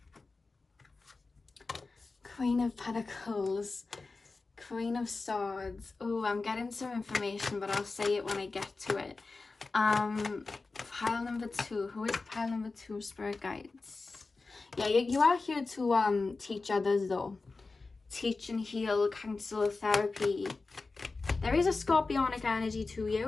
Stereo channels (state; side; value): quieter; right; 3.8 dB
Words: Queen of Pentacles, Queen of Swords. Oh, I'm getting some information, but I'll say it when I get to it. Pile number 2. Who is pile number 2, Spirit Guides? Yeah, you are here to teach others though. Teach and heal, counsel, therapy. There is a Scorpionic energy to